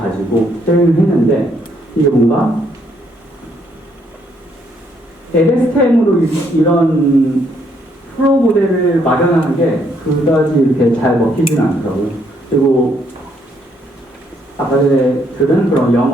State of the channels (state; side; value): normal; both; correlation 0.71